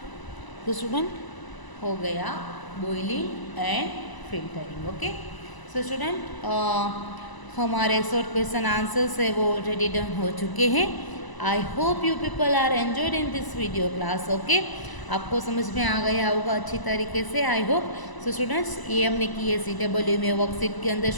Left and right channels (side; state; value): right; late; 1.0 ms